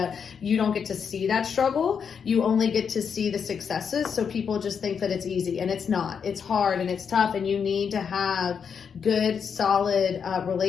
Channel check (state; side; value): quieter; right; 6.8 dB